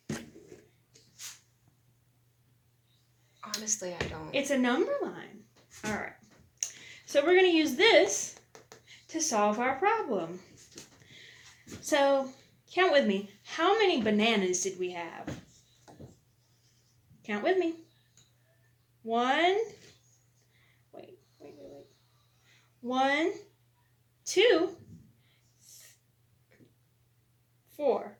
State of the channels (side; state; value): both; identical; correlation 1.00